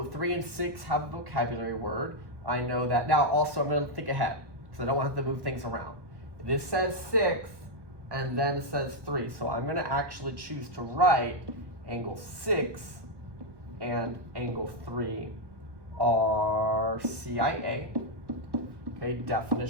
3 and 6 have a vocabulary word. I know that. Now also I'm going to think ahead, because I don't want to have to move things around. This says 6, and then it says 3. So I'm going to actually choose to write angle 6 and angle 3 are CIA. Okay,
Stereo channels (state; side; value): late; left; 1.2 ms